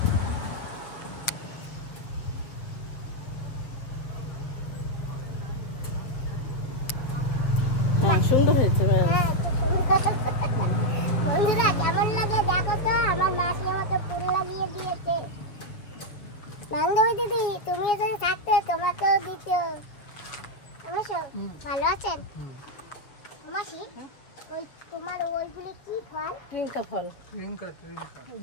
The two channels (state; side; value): late; right; 7.1 ms